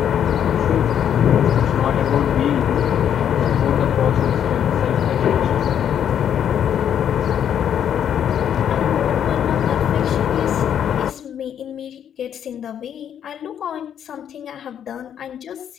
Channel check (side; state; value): right; quieter; 9.2 dB